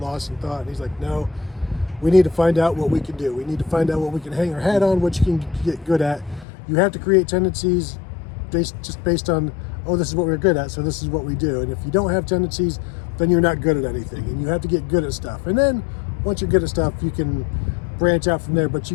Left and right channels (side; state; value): right; drops out; at 6.5 s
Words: in thought? And he's like, no, we need to find out what we can do. We need to find out what we can hang our hat on, what you can get good at. You have to create tendencies based on, oh, this is what we're good at, so this is what we do. And if you don't have tendencies, then you're not good at anything. And you have to get good at stuff. And then once you're good at stuff, you can branch out from there. But you